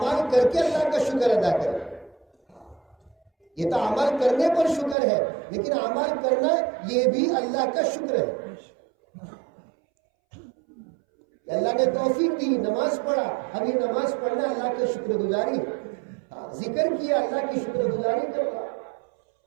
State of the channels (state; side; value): drops out; left; at 5.0 s